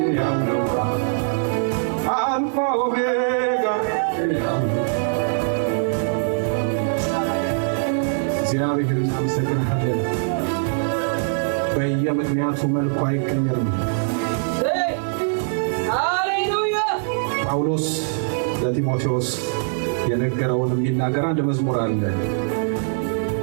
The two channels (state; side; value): silent; left; digital silence